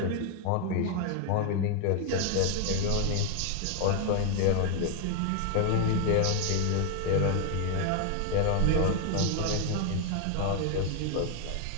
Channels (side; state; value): both; different; correlation 0.01